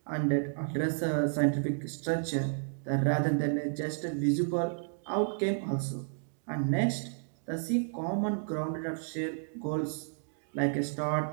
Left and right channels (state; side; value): silent; left; digital silence